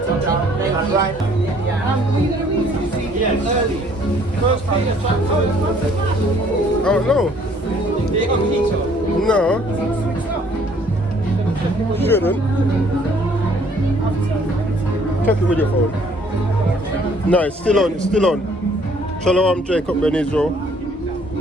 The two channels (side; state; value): both; normal; correlation 0.60